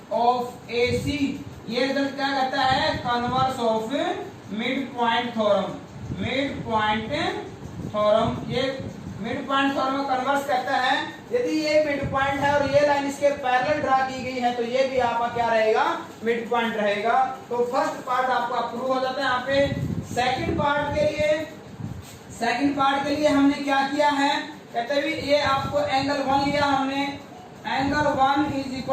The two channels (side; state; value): both; identical; correlation 1.00